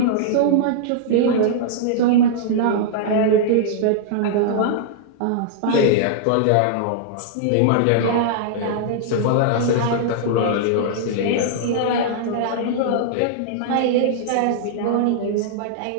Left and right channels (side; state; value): both; different; correlation -0.01